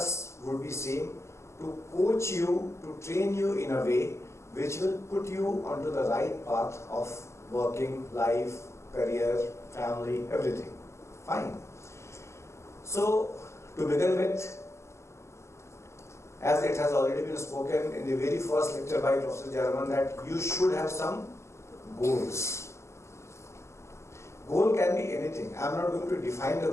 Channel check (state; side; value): late; right; 0.13 ms